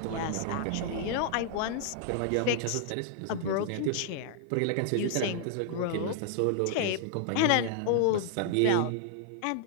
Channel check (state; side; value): different; both; correlation -0.01